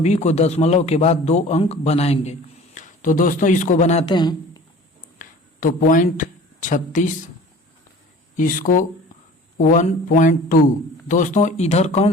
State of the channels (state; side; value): normal; both; correlation 0.44